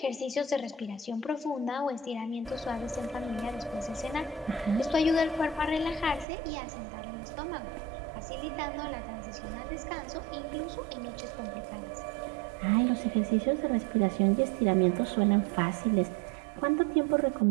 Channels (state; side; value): drops out; left; at 6.2 s